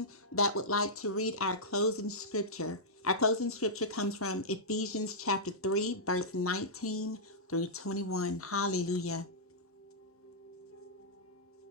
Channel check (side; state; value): both; normal; correlation -0.12